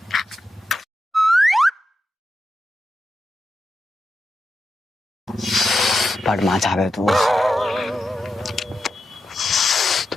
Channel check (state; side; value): normal; both; correlation 0.88